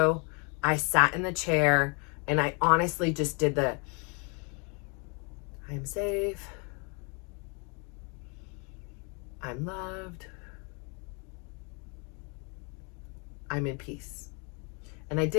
I sat in the chair, and I honestly just did I'm safe. I'm loved. I'm in peace. And I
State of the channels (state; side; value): quieter; right; 34.9 dB